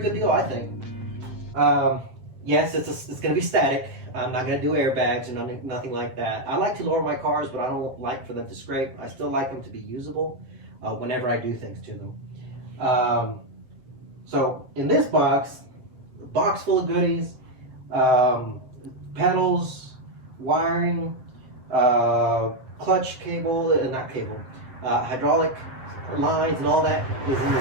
deal, I think. Yes, it's going to be static. I'm not going to do airbags or nothing like that. I like to lower my cars, but I don't like for them to scrape. I still like them to be usable whenever I do things to them. So in this box, a box full of goodies, pedals, wiring, clutch cable, not cable, hydraulic lines and all that is in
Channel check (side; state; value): left; late; 7.7 ms